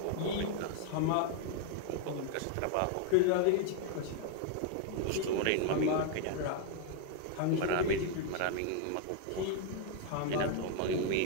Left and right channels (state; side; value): different; both; correlation 0.00